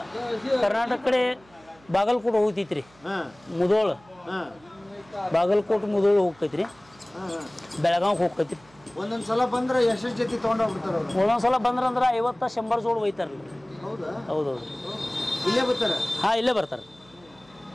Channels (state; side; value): noise; right; hum, 28 dB below the sound